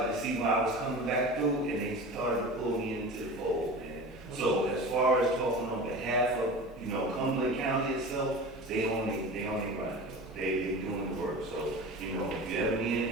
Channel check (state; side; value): normal; both; correlation 0.33